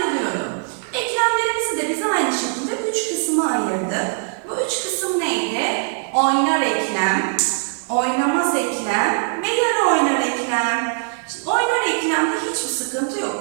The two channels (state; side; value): silent; left; digital silence